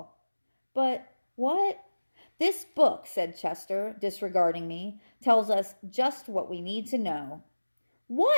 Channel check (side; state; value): both; inverted; correlation -1.00